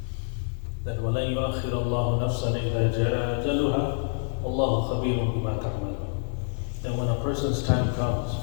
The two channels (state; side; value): silent; right; 55 dB below the other